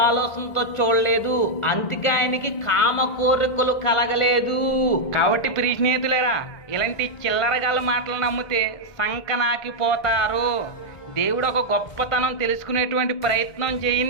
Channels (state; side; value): late; right; 1.5 ms